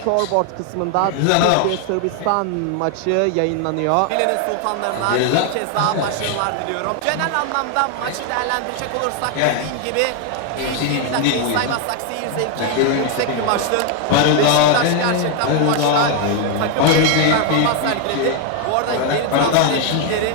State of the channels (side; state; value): both; different; correlation 0.01